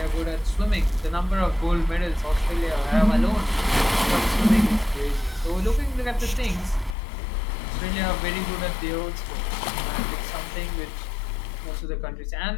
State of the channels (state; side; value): drops out; right; at 7.0 s